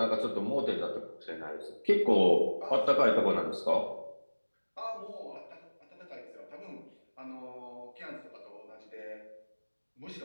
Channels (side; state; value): both; inverted; correlation -1.00